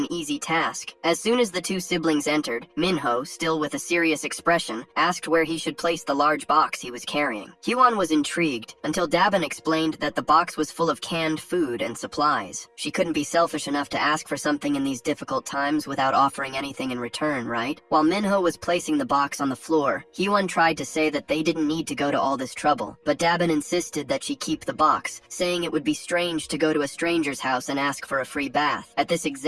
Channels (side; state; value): both; identical; correlation 1.00